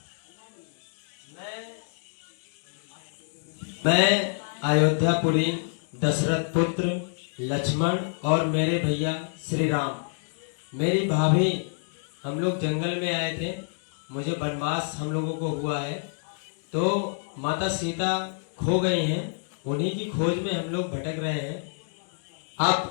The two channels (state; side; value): silent; right; digital silence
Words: मैं अयोध्यापुरी दशरथ पुत्र लक्ष्मण और मेरे भैया श्री राम, मेरी भाभी, हम लोग जंगल में आए थे। मुझे वनवास हम लोगों को हुआ है, तो माता सीता खो गई हैं। उन्हीं की खोज में हम लोग भटक रहे हैं। आप